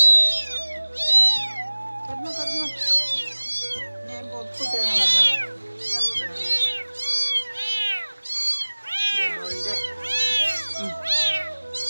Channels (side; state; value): both; inverted; correlation -1.00